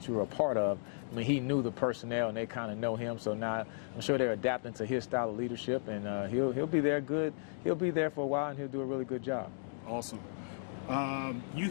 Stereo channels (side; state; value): right; silent; digital silence